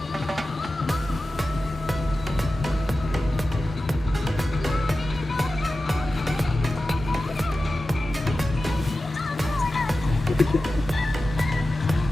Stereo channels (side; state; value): both; normal; correlation 0.94